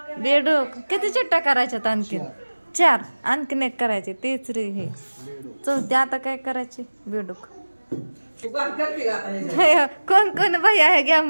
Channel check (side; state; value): both; inverted; correlation -1.00